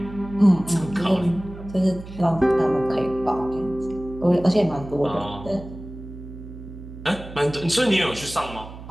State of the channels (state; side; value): noise; right; hum, 14 dB below the sound